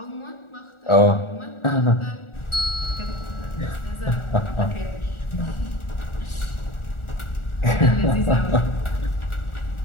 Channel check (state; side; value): late; right; 1.4 ms